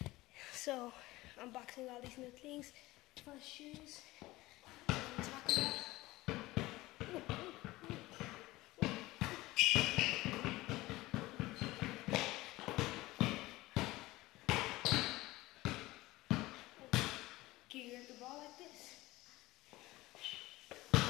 So, unboxing all these new things. Fun shoes. Talk about. Can you grab the ball like this?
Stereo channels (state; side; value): quieter; right; 19.0 dB